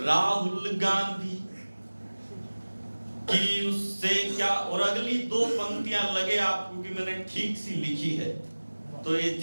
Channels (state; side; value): inverted; both; correlation -1.00